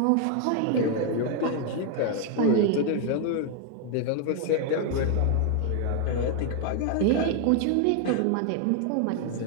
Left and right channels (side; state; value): both; different; correlation 0.01